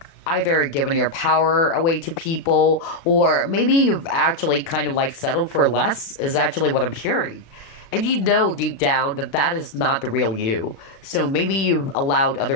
either given your power away to people, or maybe you've actually kind of like settled for less, is actually what I'm hearing. And deep down that that is not the real you. So maybe you've allowed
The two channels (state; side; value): late; right; 36 ms